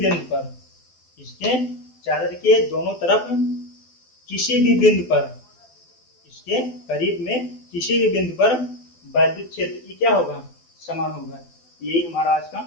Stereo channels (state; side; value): late; right; 12 ms